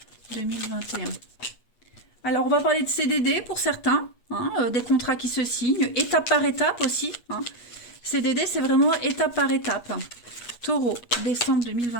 2021. Alors, on va parler de CDD pour certains. Hein, des contrats qui se signent. Étape par étape aussi. Hein. CDD, c'est vraiment étape par étape. Taureau, décembre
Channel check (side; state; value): right; late; 8.3 ms